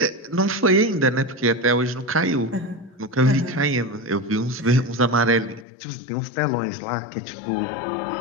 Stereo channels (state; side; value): drops out; right; at 5.7 s